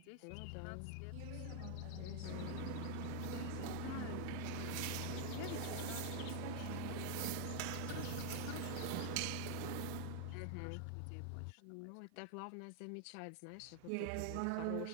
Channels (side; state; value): both; different; correlation 0.00